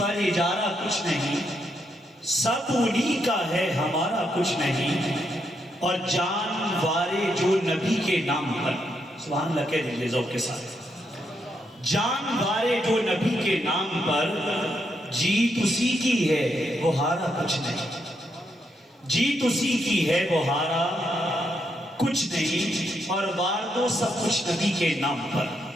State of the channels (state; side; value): normal; both; correlation 0.79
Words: پر اجارہ کچھ نہیں، سب انہی کا ہے ہمارا کچھ نہیں، اور جان وارے جو نبی کے نام پر، سبحان اللہ کہہ دیجئے ذوق کے ساتھ، جان وارے جو نبی کے نام پر، جیت اسی کی ہے وہ ہارا کچھ نہیں، جیت اسی کی ہے وہ ہارا کچھ نہیں، اور وار دو سب کچھ نبی کے نام پر،